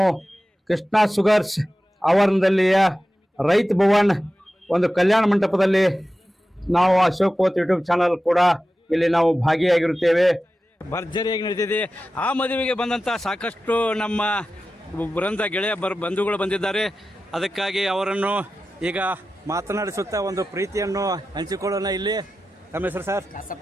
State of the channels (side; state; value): both; normal; correlation 0.94